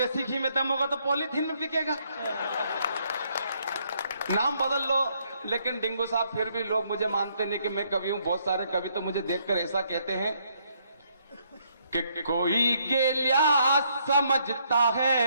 घी में दम होगा तो पॉलीथीन में बिकेगा। नाम बदल लो। लेकिन डिंगू साहब फिर भी लोग मुझे मानते नहीं कि मैं कवि हूं। बहुत सारे कवि तो मुझे देखकर ऐसा कहते हैं कि कोई गेलिया समझता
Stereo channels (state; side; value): inverted; both; correlation -0.71